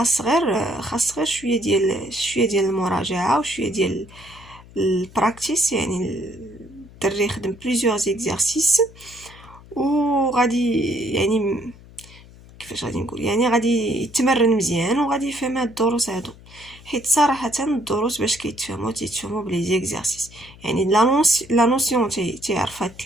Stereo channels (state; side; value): noise; left; hum, 21 dB below the sound